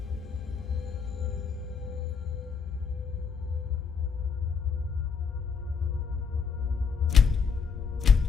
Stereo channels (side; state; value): right; quieter; 5.8 dB